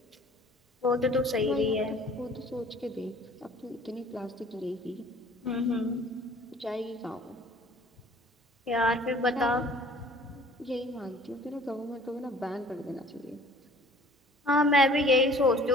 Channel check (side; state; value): both; normal; correlation 0.51